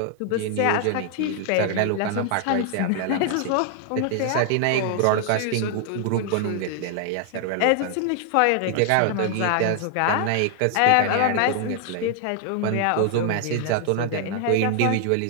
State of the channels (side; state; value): both; different; correlation 0.00